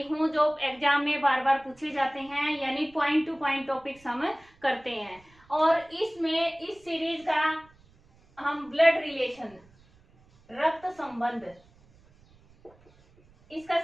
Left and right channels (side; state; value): right; noise; rumble, 29 dB below the sound